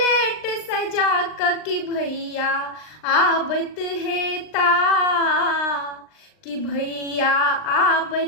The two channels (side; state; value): right; late; 39 ms